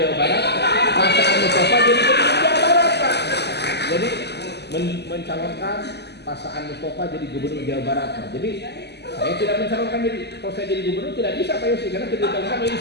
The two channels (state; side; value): late; right; 0.49 ms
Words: Barat, Pak Saan Mustafa jadi gubernur Jawa Barat Pak. Jadi mencalonkan Pak Saan Mustafa jadi gubernur Jawa Barat Pak. Jadi saya tidak mencalonkan jadi, kalau saya jadi gubernur tidak bisa Pak Yosi karena tidak dicalonkan oleh